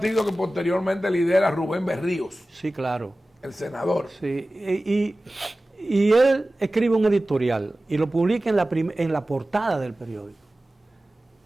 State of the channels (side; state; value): both; normal; correlation 0.96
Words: que posteriormente lidera Rubén Berríos. Sí, claro. El senador. Sí, y él escribe un editorial y lo publica en la portada del periódico.